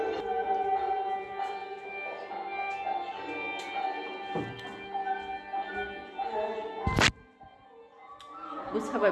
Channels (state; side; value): identical; both; correlation 1.00